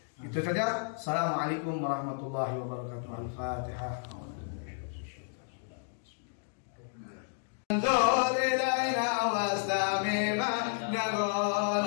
Itu saja. Assalamualaikum warahmatullahi wabarakatuh. Al-Fatihah. انظر إلينا واستمع ما نقول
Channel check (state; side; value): silent; right; digital silence